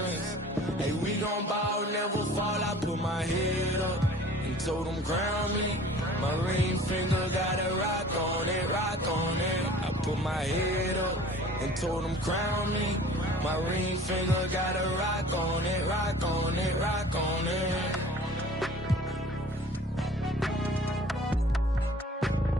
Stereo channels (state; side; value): normal; both; correlation 0.47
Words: Hey, we gon' bow, never fall. I put my head up and told them crown me. My ring finger got a rock on it, rock on it. I put my head up and told them crown me. My ring finger got a rock on it, rock on it, rock on it.